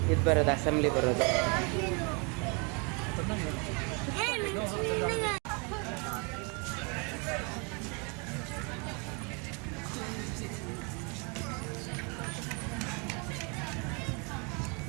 ಇದು ಬರೋದು, ಅಸೆಂಬ್ಲಿ ಬರೋದು.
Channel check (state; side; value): quieter; left; 33.3 dB